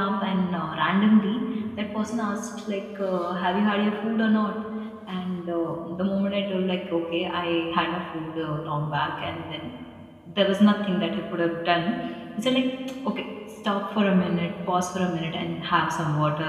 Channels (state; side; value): identical; both; correlation 1.00